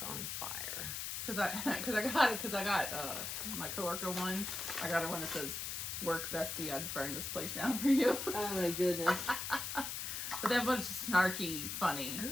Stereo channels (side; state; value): left; noise; hiss, 4 dB below the sound